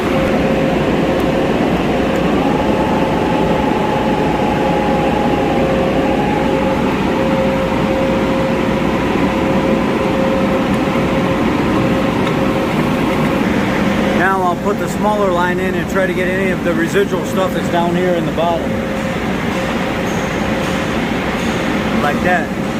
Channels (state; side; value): identical; both; correlation 1.00